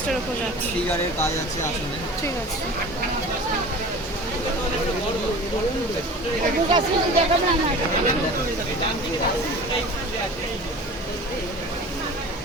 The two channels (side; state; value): both; normal; correlation 0.39